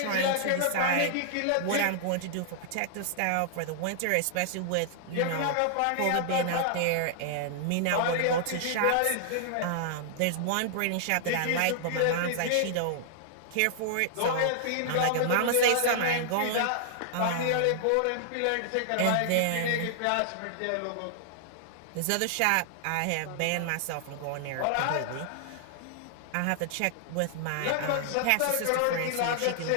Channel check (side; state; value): both; different; correlation -0.01